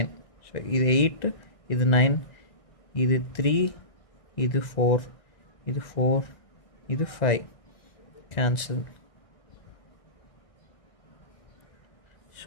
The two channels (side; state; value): right; late; 2.0 ms